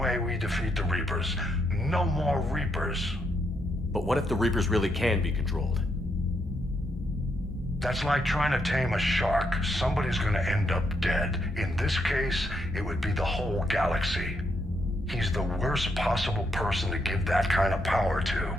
we defeat the Reapers. No more Reapers. But what if the Reapers really can be controlled? That's like trying to tame a shark. Somebody's gonna end up dead. In this case, it would be the whole galaxy. He's the worst possible person to give that kind of power to.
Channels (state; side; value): normal; both; correlation 0.78